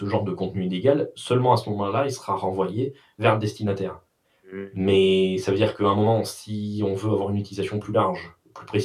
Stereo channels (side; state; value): both; identical; correlation 1.00